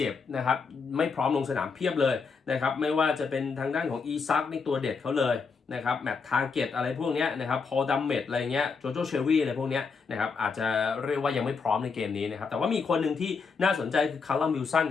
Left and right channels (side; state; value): right; quieter; 5.0 dB